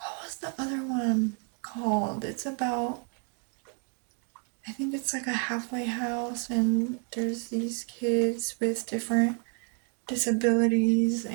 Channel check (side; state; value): left; quieter; 39.6 dB